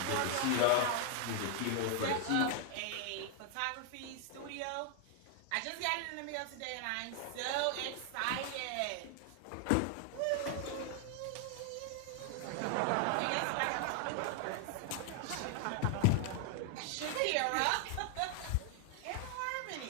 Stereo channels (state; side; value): different; both; correlation 0.00